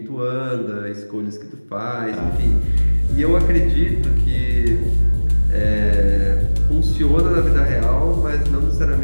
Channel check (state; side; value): inverted; both; correlation -1.00